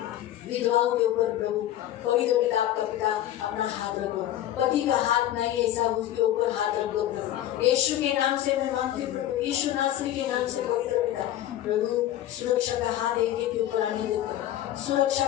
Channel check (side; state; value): right; quieter; 12.8 dB